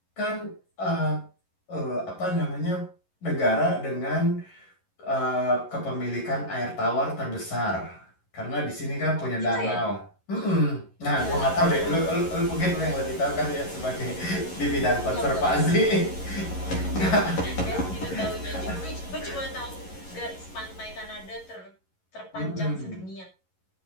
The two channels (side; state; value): right; late; 11 ms